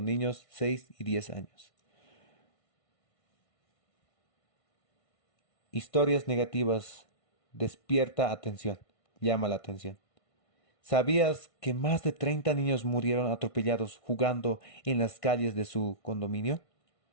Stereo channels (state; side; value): late; right; 1.5 ms